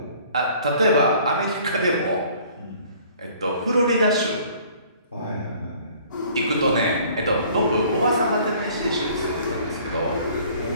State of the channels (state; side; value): inverted; both; correlation -0.54